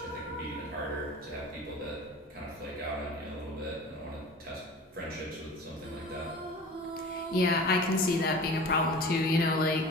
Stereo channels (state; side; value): normal; both; correlation 0.39